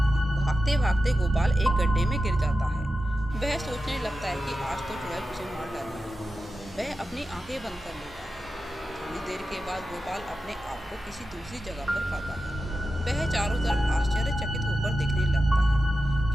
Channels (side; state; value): both; normal; correlation 0.92